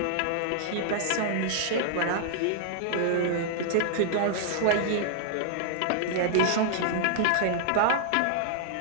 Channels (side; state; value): both; different; correlation -0.01